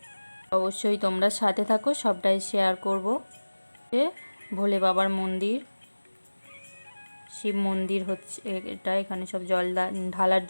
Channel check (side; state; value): both; inverted; correlation -1.00